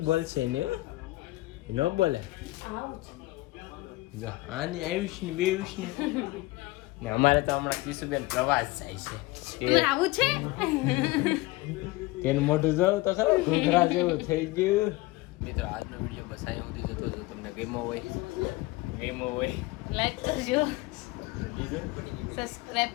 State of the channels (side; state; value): right; quieter; 20.5 dB